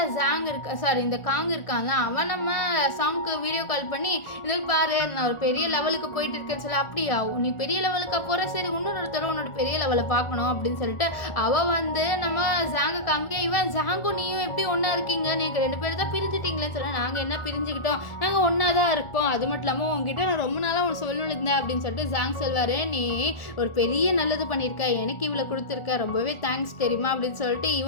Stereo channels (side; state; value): right; late; 1.4 ms